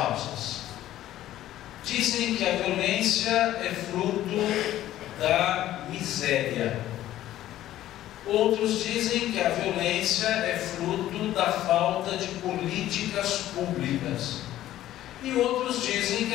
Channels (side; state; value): right; quieter; 13.5 dB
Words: Dizem que a violência é fruto da miséria. Outros dizem que a violência é fruto da falta de políticas públicas. E outros dizem que